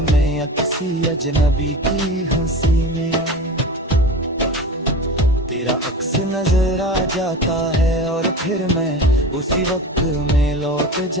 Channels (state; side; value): normal; both; correlation 0.31